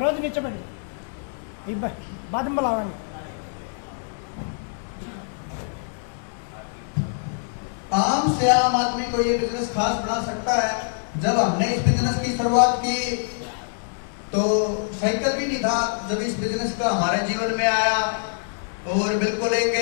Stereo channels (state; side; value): silent; right; 61 dB below the other